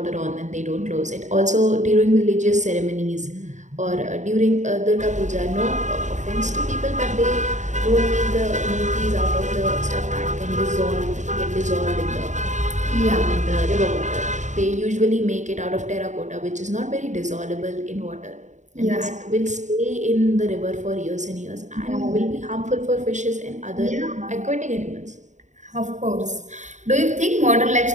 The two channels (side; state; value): left; late; 0.35 ms